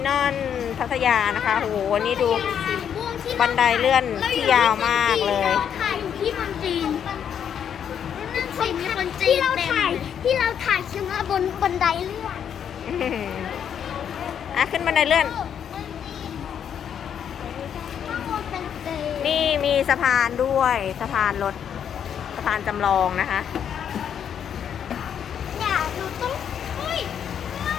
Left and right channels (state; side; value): quieter; right; 8.5 dB